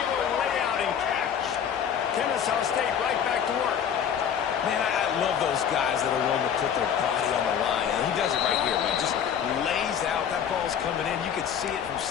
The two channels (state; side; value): quieter; right; 8.4 dB